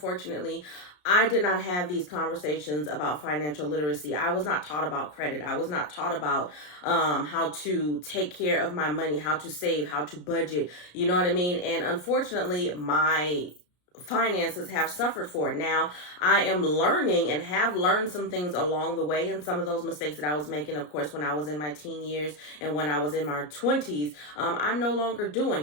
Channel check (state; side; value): late; right; 33 ms